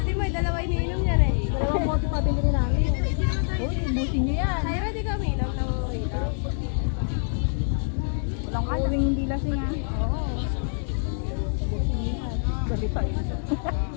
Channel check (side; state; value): right; silent; digital silence